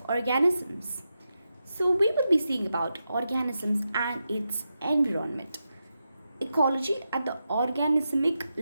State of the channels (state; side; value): inverted; both; correlation -0.88